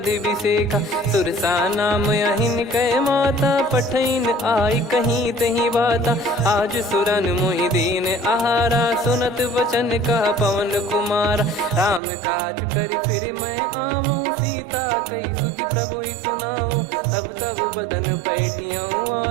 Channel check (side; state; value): left; drops out; at 12.0 s